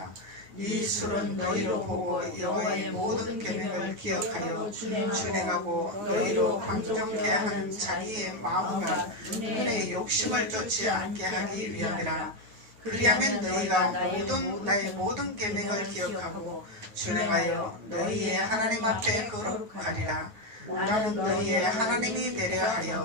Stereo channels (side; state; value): left; late; 9.2 ms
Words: 이 술은 너희로 보고 여호와의 모든 계명을 기억하여 준행하고 너희로 방종케 하는 자기의 마음과 눈의 욕심을 쫓지 않게 하기 위함이라. 그리하면 너희가 나의 모든 계명을 기억하고 준행하여 너희의 하나님 앞에 거룩하리라. 나는 너희의 하나님이 되려